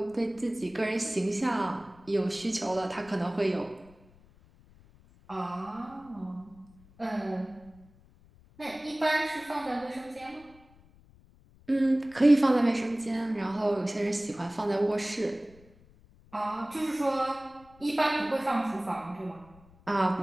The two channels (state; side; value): noise; left; rumble, 26 dB below the sound